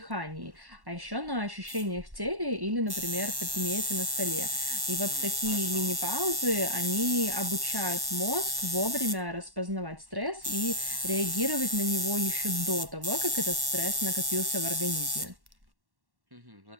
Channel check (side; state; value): left; late; 1.1 ms